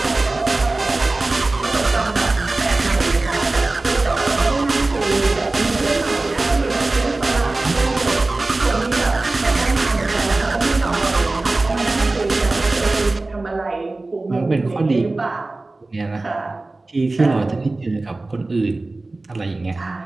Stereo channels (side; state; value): left; quieter; 3.1 dB